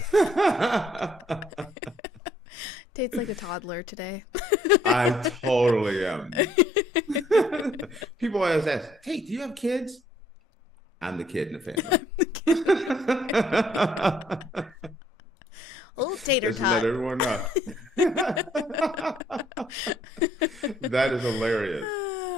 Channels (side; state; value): both; normal; correlation 0.65